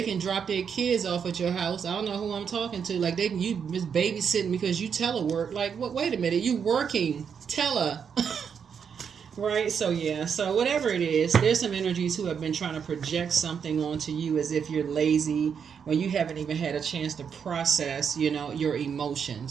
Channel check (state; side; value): quieter; left; 7.0 dB